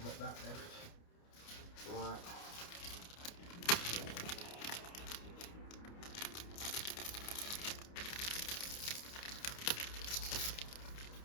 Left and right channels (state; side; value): late; right; 29 ms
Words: that left. Right.